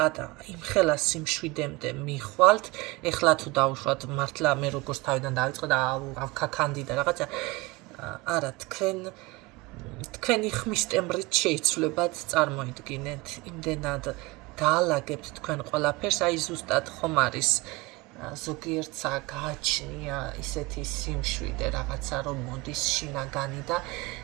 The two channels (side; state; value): left; quieter; 22.9 dB